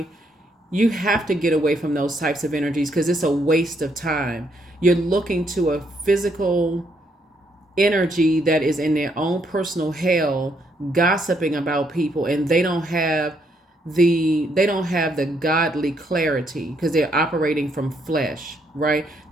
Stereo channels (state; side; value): normal; both; correlation 0.73